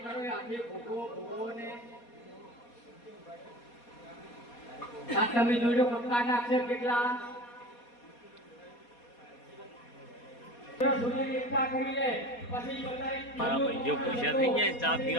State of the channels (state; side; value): late; right; 4.2 ms